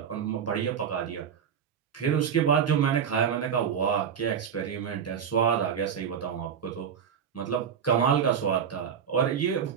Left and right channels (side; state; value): left; quieter; 7.7 dB